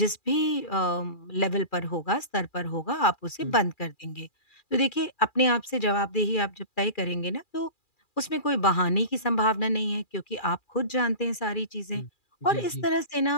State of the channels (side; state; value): right; late; 2.4 ms